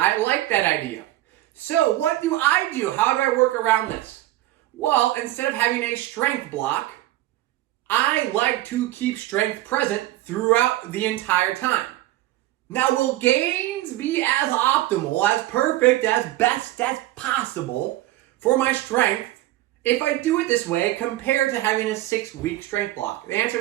like that idea. So what do I do? How do I work around this? Well, instead of having a strength block, I like to keep strength present throughout the entire time. Now, will gains be as optimal, as perfect, as best as possible for my strength if I do it this way compared to having a 6-week strength block? The answer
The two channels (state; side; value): quieter; left; 16.0 dB